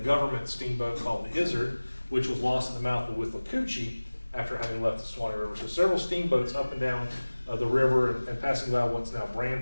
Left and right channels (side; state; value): both; inverted; correlation -1.00